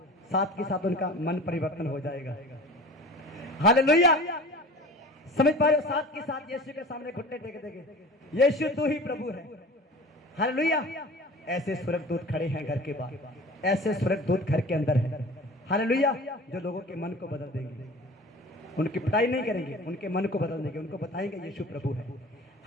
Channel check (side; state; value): both; normal; correlation 0.39